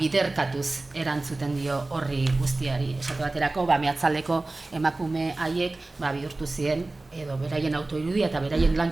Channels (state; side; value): quieter; left; 3.1 dB